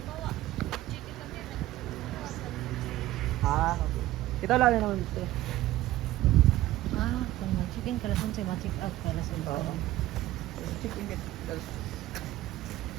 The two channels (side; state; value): left; quieter; 15.7 dB